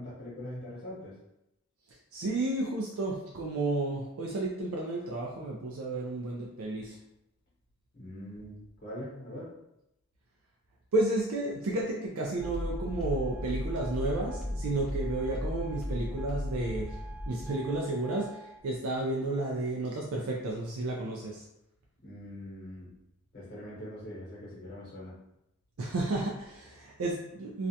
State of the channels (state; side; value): normal; both; correlation 0.44